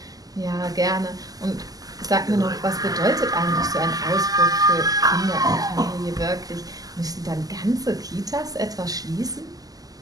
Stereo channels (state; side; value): late; left; 0.17 ms